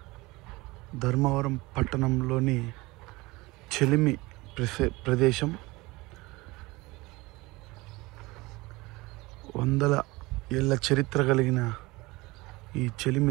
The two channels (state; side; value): quieter; left; 22.1 dB